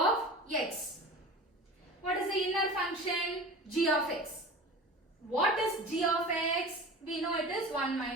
x. What is the inner function? G of x. What is g of x? We know it is 1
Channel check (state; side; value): normal; both; correlation 0.36